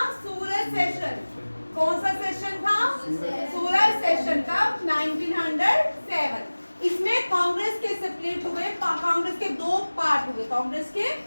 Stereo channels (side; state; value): both; inverted; correlation -1.00